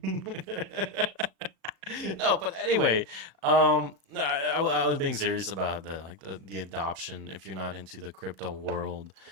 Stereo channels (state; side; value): late; left; 37 ms